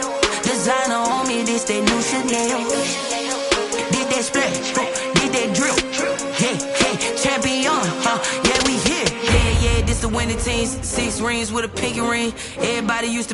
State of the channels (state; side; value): identical; both; correlation 1.00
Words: Designer on me, this that new Chanel. Did that splash, did that drill. Yeah, champion, yeah, we here. Yeah, this the winning teams. 6 rings with a pinky ring. Everybody used